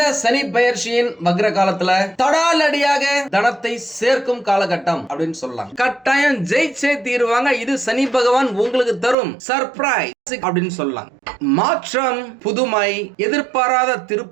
சனி பெயர்ச்சியின் வக்ர காலத்துல தடாலடியாக தனத்தை சேர்க்கும் காலகட்டம் அப்படின்னு சொல்லலாம். கட்டாயம் ஜெயிச்சே தீருவாங்க. இது சனி பகவான் உங்களுக்கு தரும் சர்ப்ரைஸ் அப்படின்னு சொல்லலாம். மாற்றம், புதுமை, எதிர்பாராத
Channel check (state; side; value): drops out; left; at 9.2 s